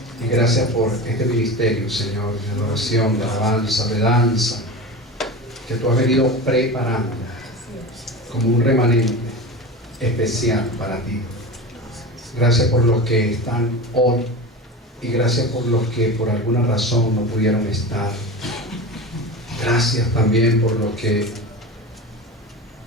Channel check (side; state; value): both; normal; correlation 0.28